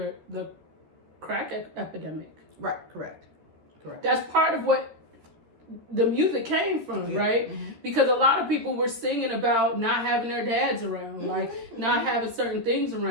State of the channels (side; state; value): left; late; 13 ms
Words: the crack epidemic. Right, correct. That's part of what the music came from, right? Because a lot of people were singing about not having their dads around, like not having certain things